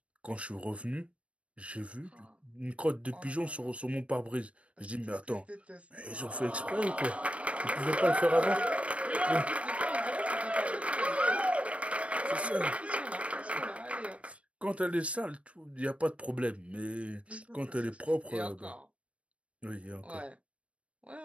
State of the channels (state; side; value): late; left; 0.062 ms